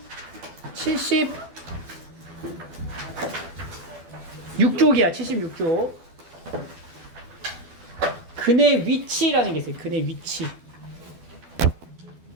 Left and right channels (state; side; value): late; left; 12 ms